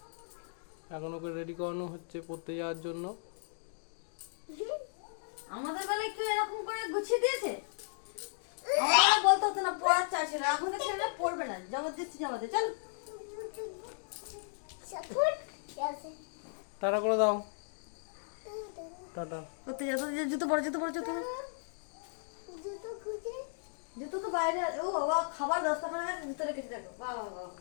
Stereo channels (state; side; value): silent; right; digital silence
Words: এখন ওকে রেডি করানো হচ্ছে পড়তে যাওয়ার জন্য। আমাদের বেলায় কেউ এরকম করে গুছিয়ে দিয়েছে? আমাদের বলতে হতো না পড়ার চাষ ছিল, এখন তো ছেলেরা পড়বে না, জবরদস্তি জামাতে চল। টাটা করে দাও, টাটা। করতে যা, জুতো পরে জুতো তো বাইরে। ও বাবা, খাবার 10টা করে গেছে, জুতো রেখেছি দেখো। বাবা বাবা,